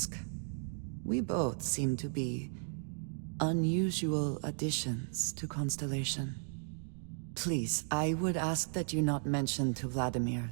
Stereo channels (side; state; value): left; silent; digital silence